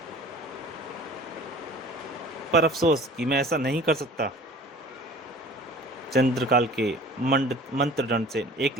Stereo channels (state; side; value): normal; both; correlation 0.45